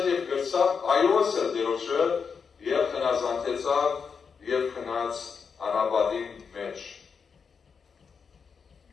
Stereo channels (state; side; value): quieter; right; 6.0 dB